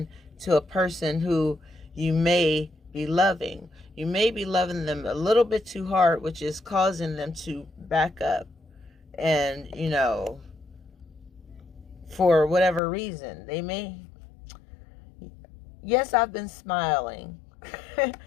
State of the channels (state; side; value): drops out; right; at 12.8 s